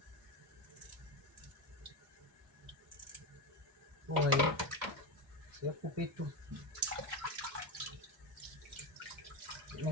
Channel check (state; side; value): normal; both; correlation 0.15